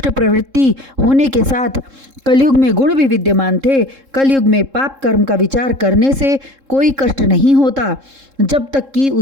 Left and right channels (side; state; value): left; late; 3.7 ms